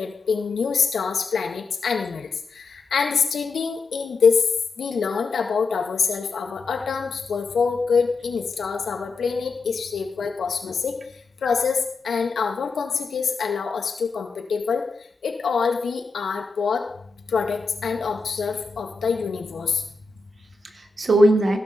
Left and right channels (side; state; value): right; quieter; 3.9 dB